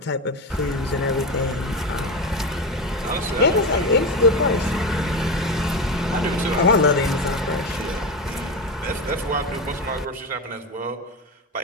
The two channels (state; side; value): normal; both; correlation 0.20